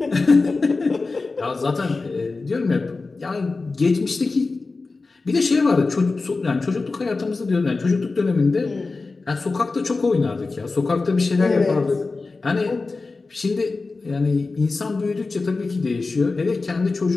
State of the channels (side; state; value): right; quieter; 3.8 dB